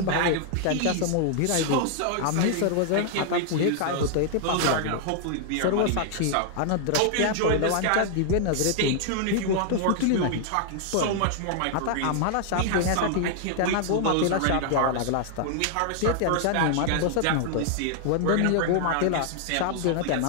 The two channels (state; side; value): different; both; correlation -0.01